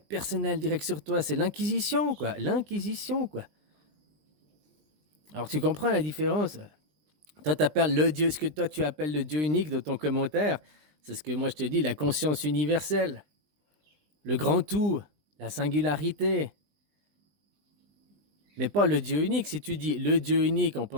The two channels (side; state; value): left; late; 20 ms